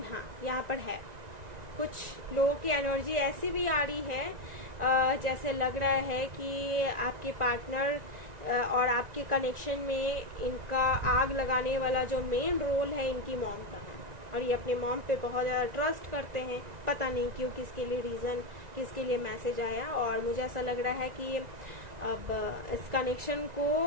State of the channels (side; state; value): left; late; 1.9 ms